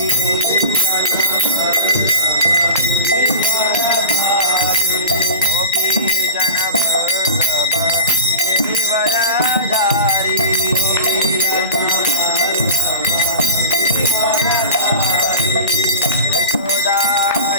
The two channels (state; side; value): inverted; both; correlation -0.32